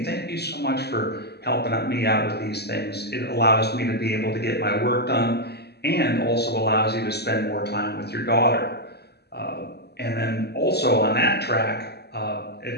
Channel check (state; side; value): late; right; 0.48 ms